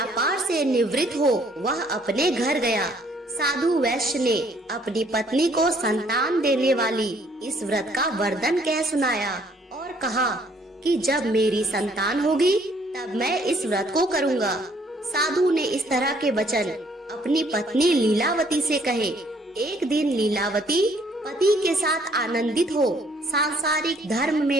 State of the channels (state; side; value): normal; both; correlation 0.63